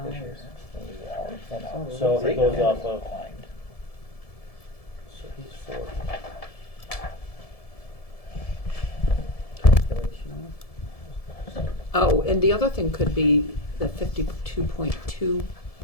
hours. year. Oh, So if it goes Yeah, off of. declined. So he's 40. Oh, and the other thing could be the 52.2,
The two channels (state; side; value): late; right; 1.7 ms